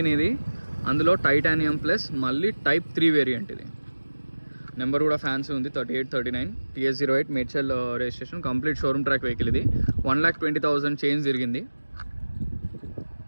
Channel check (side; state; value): both; inverted; correlation -1.00